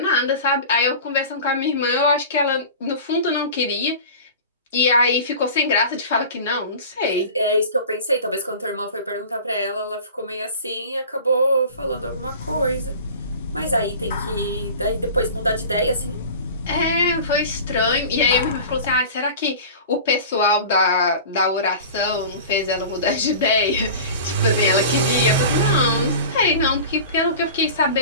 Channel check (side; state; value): both; inverted; correlation -0.37